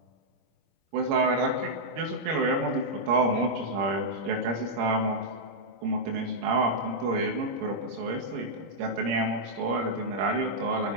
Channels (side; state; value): left; late; 26 ms